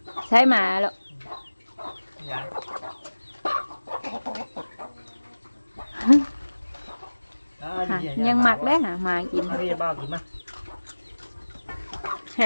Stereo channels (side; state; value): both; inverted; correlation -1.00